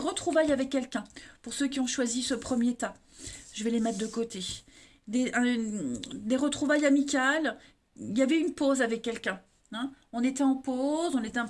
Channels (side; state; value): both; identical; correlation 1.00